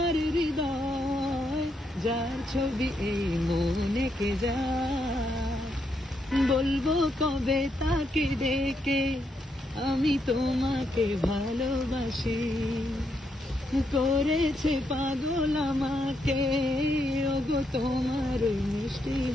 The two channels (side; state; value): both; normal; correlation 0.79